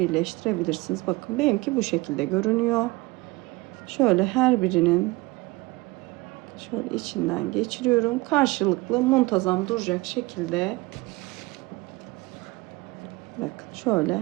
Bakın benimki bu şekilde görünüyor. Şöyle her birinin şöyle içinden geçiriyorum. Karşılıklı muntazam duracak şekilde. Bakın şöyle.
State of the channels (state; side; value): quieter; left; 22.4 dB